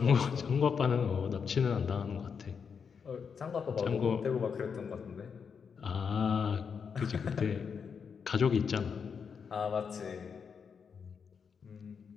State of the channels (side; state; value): right; quieter; 6.3 dB